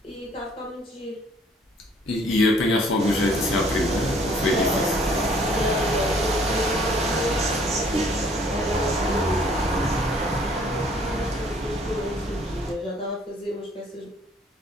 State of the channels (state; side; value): normal; both; correlation 0.60